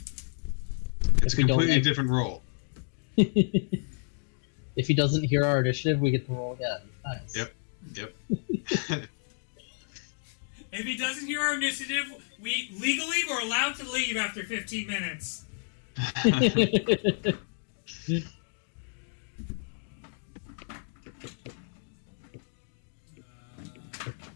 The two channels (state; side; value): silent; right; digital silence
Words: It's If a we don't completely have- different roll. If he doesn't hear our initiative, we get to roll again. Nice. Yep. If he doesn't hear our initiative, we legally were allowed to leave after 15 minutes.